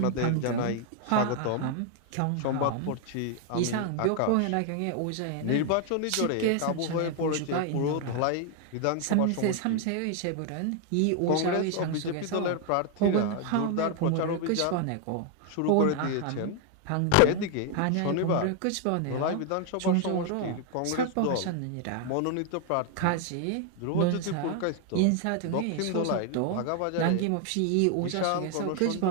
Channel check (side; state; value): both; different; correlation 0.01